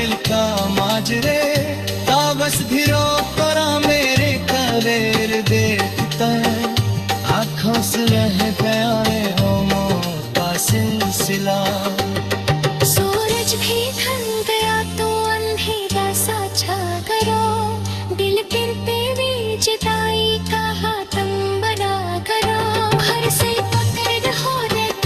का माजरे। ताबस भी रोक करा मेरे कलेर देखता, आँखों से रह गया है होमों का सिलसिला। सूरज भी ढल गया तो अंधेरा सा छा करो, दिल गिरते भी जुदाई का हाथम बना करो। घर से पकड़ हो रे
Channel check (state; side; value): identical; both; correlation 1.00